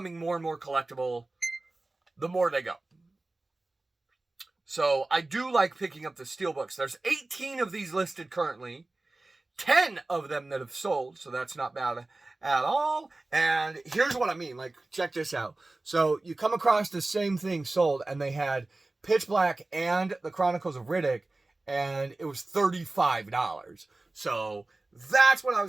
more and more collectible the more they go. So I do like picking up the steelbooks. There's 18 of these listed currently, 10 of them that have sold, so that's not bad at all. And here's what I mean, like, check this out. So you come across the same thing sold, and they had Pitch Black and the Chronicles of Riddick, and it was $35. So that's what I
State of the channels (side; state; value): left; quieter; 3.0 dB